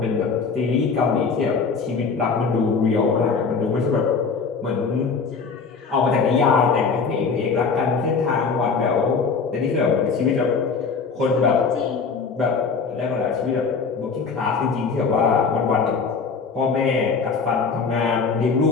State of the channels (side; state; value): right; quieter; 5.1 dB